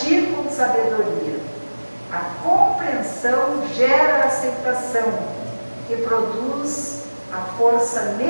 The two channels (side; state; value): both; inverted; correlation -1.00